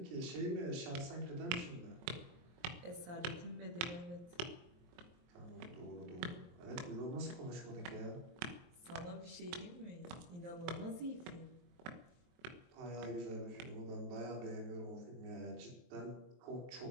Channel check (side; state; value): left; late; 23 ms